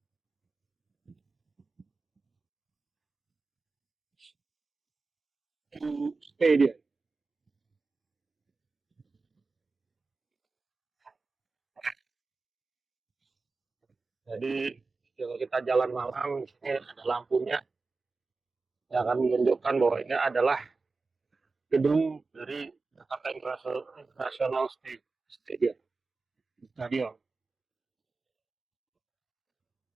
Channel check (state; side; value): quieter; left; 4.0 dB